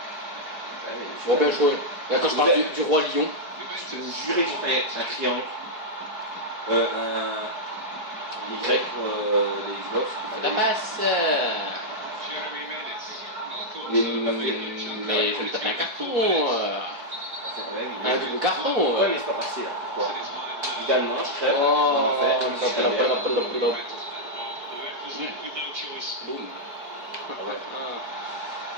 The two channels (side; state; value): left; late; 4.7 ms